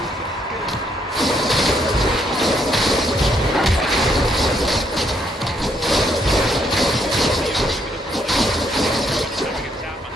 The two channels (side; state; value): both; normal; correlation 0.73